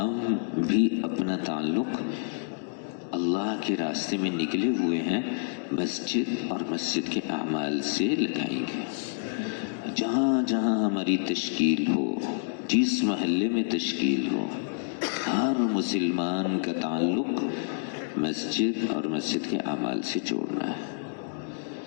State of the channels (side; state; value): right; silent; digital silence